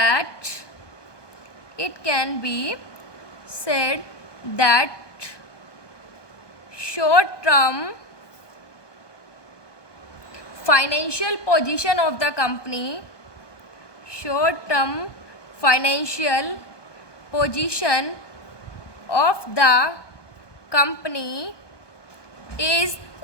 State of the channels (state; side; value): late; right; 1.2 ms